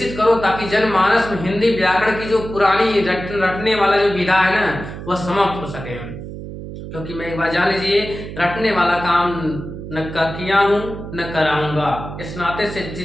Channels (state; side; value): noise; right; hum, 10 dB below the sound